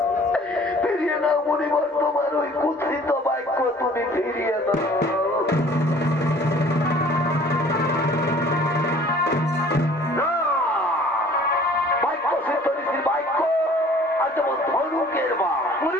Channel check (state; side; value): normal; both; correlation 0.52